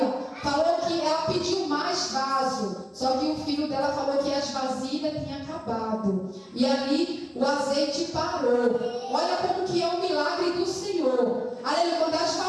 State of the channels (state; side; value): identical; both; correlation 1.00